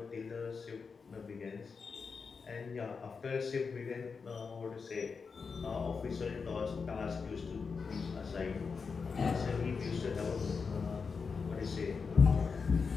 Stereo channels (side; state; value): right; quieter; 5.2 dB